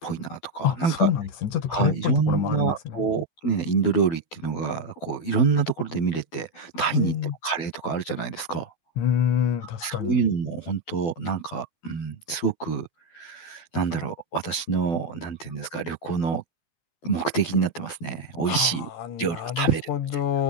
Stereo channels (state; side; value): late; right; 12 ms